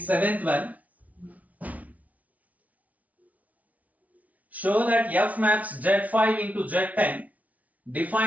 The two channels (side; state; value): left; late; 0.071 ms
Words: seventh one. Show that f maps z5 into z10